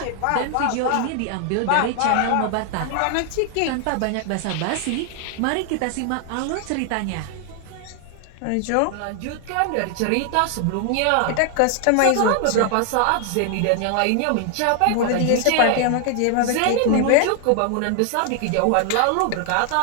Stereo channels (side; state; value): both; different; correlation 0.00